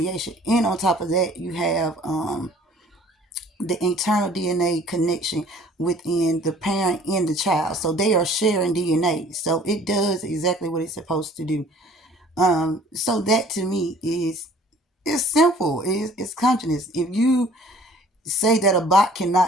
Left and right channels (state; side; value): normal; both; correlation 0.52